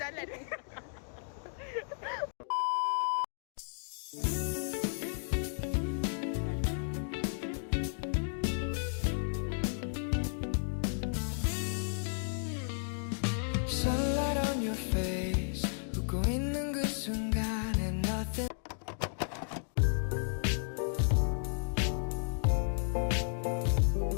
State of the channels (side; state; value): right; silent; digital silence